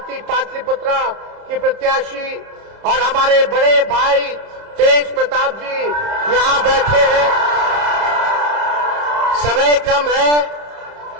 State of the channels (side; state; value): left; late; 31 ms